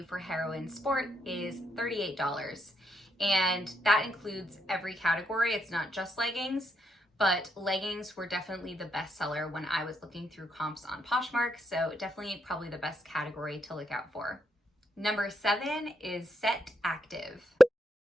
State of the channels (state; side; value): normal; both; correlation 0.78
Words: for Heroine Sport is $38. And that includes every category. It's not just leggings, but leggings were definitely the best seller when I was looking through comps on Poshmark. So definitely probably the best category to look out for. Number 7 is SETActive.